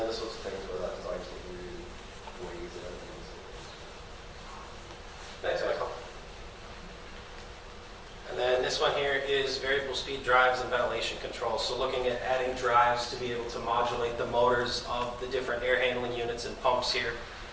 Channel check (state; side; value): identical; both; correlation 1.00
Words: the sorts of things where that design team really weighs in. Thanks, Michael. And then this one here is variable speed drives and ventilation control. So looking at adding drives to be able to modulate the motors of the different air handling units and pumps here